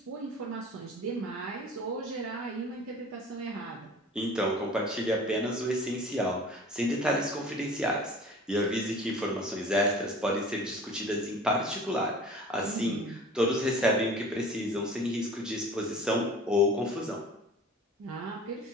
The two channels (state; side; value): normal; both; correlation 0.43